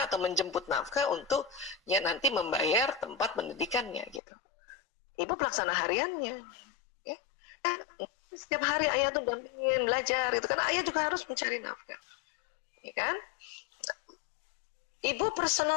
atau menjemput nafkah untuk ya nanti membayar tempat pendidikannya gitu. Ibu pelaksana hariannya. Ya. Setiap hari ayah tuh dampingin belajar itu karena ayah juga harus mencari nafkah. Ya kan? Ibu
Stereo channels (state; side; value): drops out; right; at 4.2 s